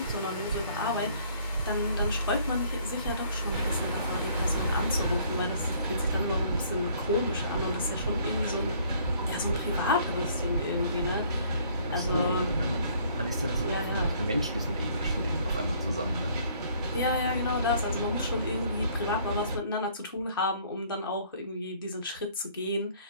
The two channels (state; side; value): inverted; both; correlation -0.59